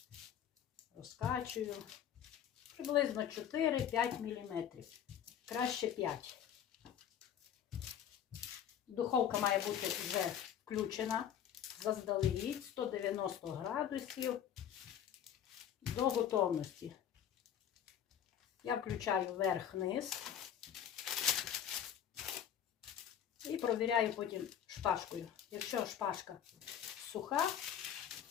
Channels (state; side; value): quieter; right; 9.4 dB